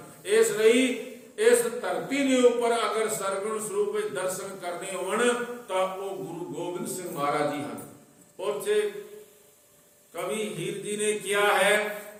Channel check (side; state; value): both; identical; correlation 1.00